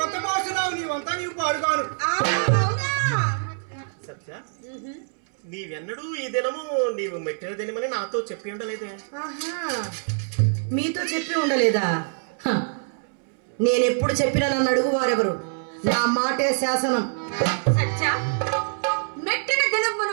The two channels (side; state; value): left; silent; 62 dB below the other